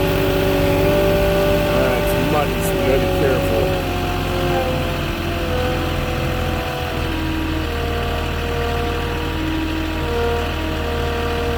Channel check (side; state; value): both; identical; correlation 1.00